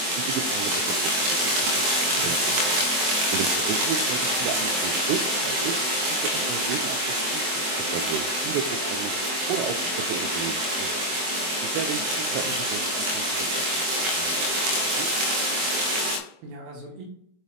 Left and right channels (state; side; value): late; left; 23 ms